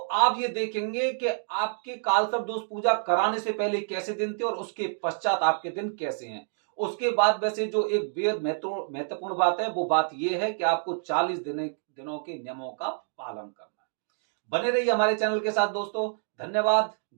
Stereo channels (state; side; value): silent; left; digital silence